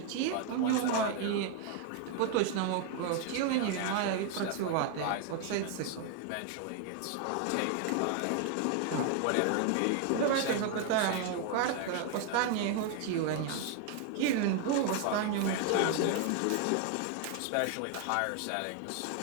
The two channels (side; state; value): both; different; correlation 0.00